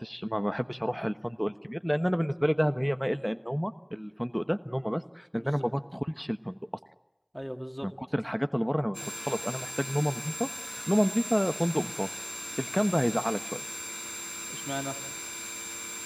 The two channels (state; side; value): identical; both; correlation 1.00